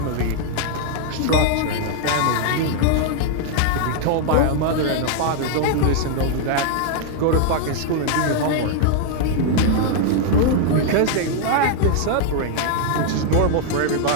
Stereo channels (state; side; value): different; both; correlation 0.00